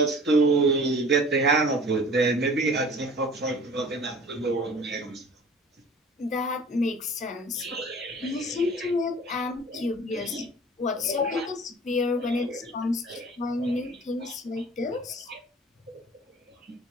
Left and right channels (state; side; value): normal; both; correlation 0.45